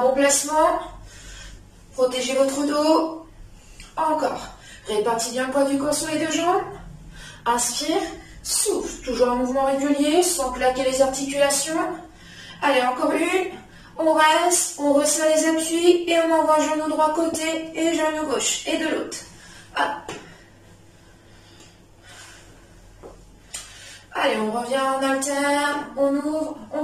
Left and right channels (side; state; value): both; identical; correlation 1.00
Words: bon placement, protégez votre dos. Encore. Répartis bien le poids du corps sur les deux jambes. Inspire, souffle. Toujours un mouvement régulier, sans claquer les articulations. Allez, encore une. On reste, on resserre les appuis et on envoie genou droit côté et genou gauche. Et de l'autre. Hop. Allez, on revient en alterne, on ouvre, on